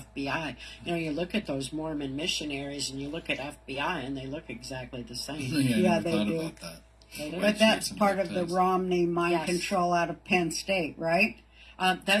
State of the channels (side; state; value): both; identical; correlation 1.00